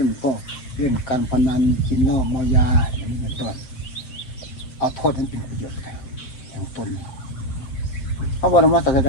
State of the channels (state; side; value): late; right; 7.7 ms